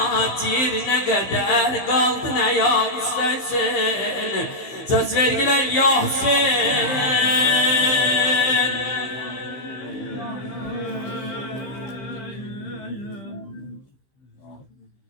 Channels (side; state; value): right; late; 15 ms